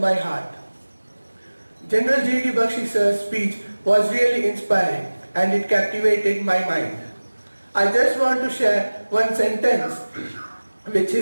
heart. General G.D. Bakshi sir's speech was really inspiring and it captivated my mind. I just want to share one sentence which he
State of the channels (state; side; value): inverted; both; correlation -1.00